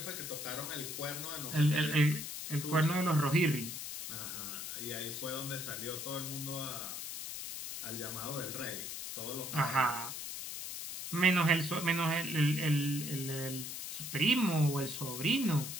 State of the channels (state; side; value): noise; left; hiss, 6 dB below the sound